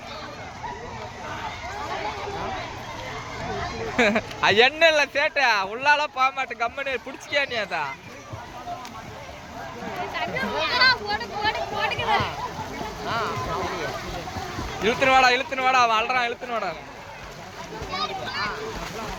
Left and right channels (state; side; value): identical; both; correlation 1.00